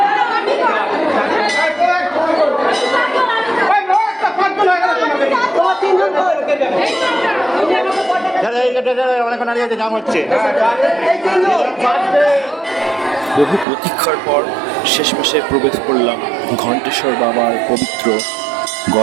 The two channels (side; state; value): left; drops out; at 13.7 s